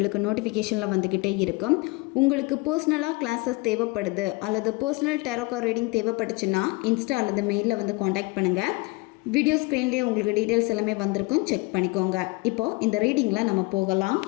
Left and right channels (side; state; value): right; quieter; 24.7 dB